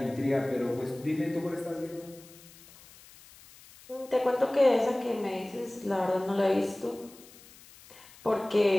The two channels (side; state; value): left; noise; hiss, 22 dB below the sound